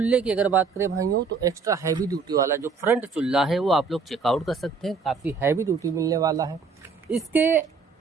की अगर बात करें भाइयों तो एक्स्ट्रा हैवी ड्यूटी वाला जो फ्रंट चूल्हा है वो आप लोग चेकआउट कर सकते हैं, काफ़ी हैवी ड्यूटी मिलने वाला है। इसके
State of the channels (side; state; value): left; quieter; 4.9 dB